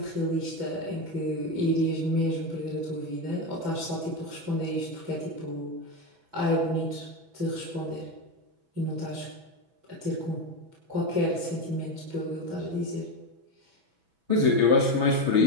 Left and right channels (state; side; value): late; left; 6.1 ms